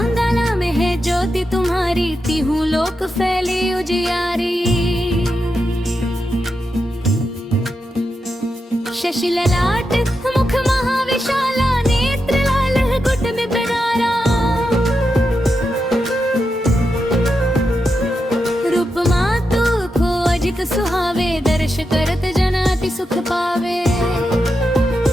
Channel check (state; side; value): normal; both; correlation 0.87